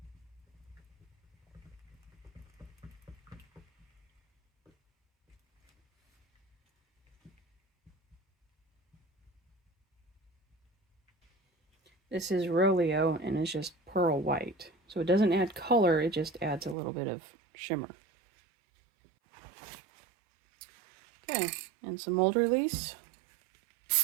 This is Roleo, and it's just pearl white. So it doesn't add color, it just adds a little bit of shimmer. Okay, and some mold release.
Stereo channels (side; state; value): left; drops out; at 16.8 s